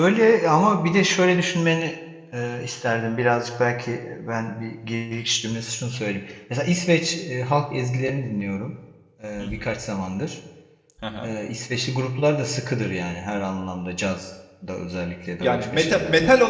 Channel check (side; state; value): both; identical; correlation 1.00